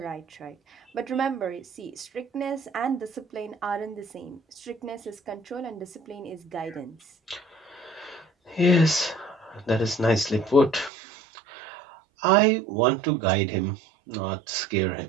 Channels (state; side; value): drops out; left; at 10.9 s